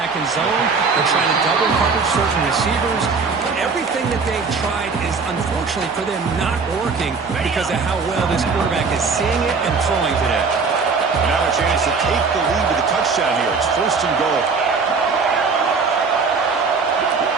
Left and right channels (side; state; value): left; quieter; 4.8 dB